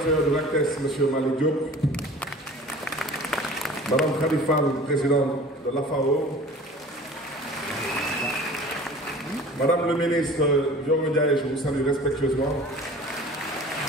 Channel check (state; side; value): normal; both; correlation 0.43